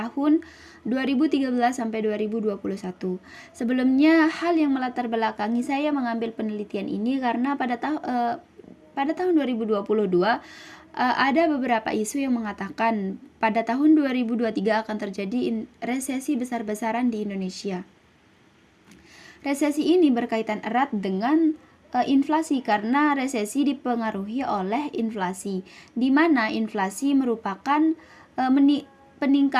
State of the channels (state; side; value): identical; both; correlation 1.00